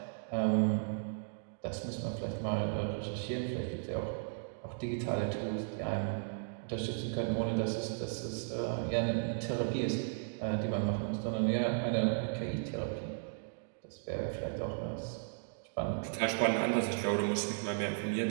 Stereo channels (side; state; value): left; silent; digital silence